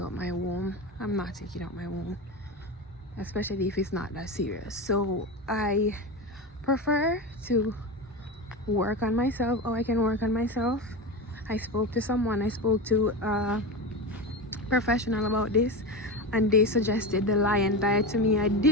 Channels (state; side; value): normal; both; correlation 0.22